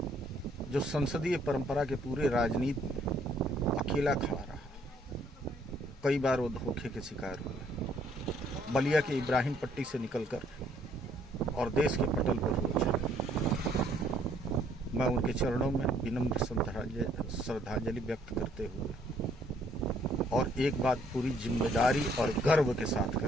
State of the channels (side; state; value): both; normal; correlation 0.65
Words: जो संसदीय परंपरा के पूरे राजनीति में अकेला खड़ा रहा। कई बार वो धोखे के शिकार हुए, बलिया के इब्राहिम पट्टी से निकलकर और देश के पटल पर हो चले। मैं उनके चरणों में विनम्र श्रद्धांजलि व्यक्त करते हुए और एक बात पूरी जिम्मेदारी और गर्व के साथ